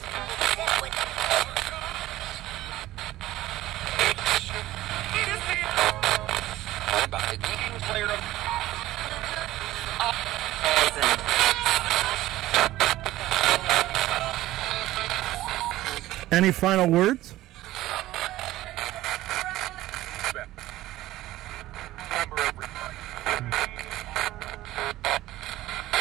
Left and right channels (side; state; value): left; quieter; 15.8 dB